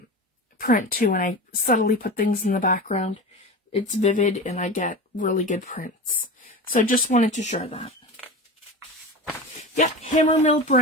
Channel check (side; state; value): both; normal; correlation 0.27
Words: print too, and I subtly put things in the background. It's vivid, and I get really good prints. So I just wanted to share that. Yep, Hammermill